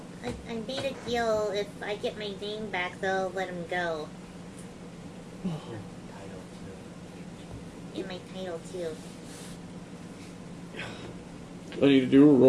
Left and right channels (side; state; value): both; identical; correlation 1.00